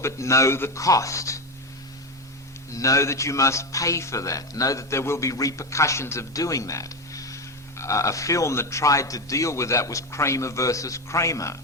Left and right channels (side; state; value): both; normal; correlation 0.15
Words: but know the cost. Know that you must pay for that. Know that there will be repercussions of doing that. A film that tried to deal with that was Kramer versus Kramer,